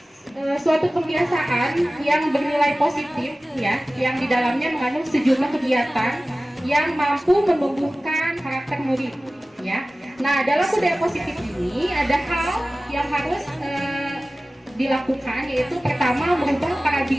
suatu kebiasaan yang bernilai positif ya, yang di dalamnya mengandung sejumlah kegiatan yang mampu menumbuhkan karakter murid ya. Nah, dalam budaya positif ini ada hal yang harus dilakukan, yaitu pertama merubah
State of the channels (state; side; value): normal; both; correlation 0.97